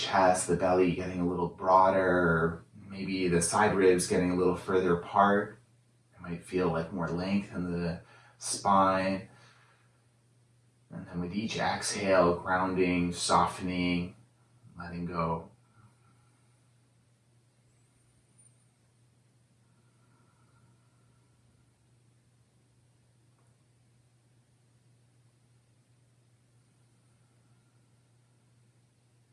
the belly getting a little broader, or maybe the side ribs getting a little further apart. It might feel like more length in the spine. And then with each exhale, grounding, softening, letting go.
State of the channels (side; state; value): both; identical; correlation 1.00